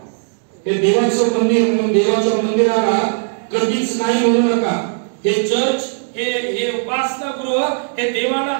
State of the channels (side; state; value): left; silent; digital silence